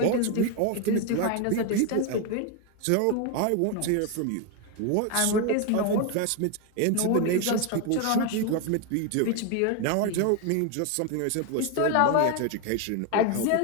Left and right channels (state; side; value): different; both; correlation 0.01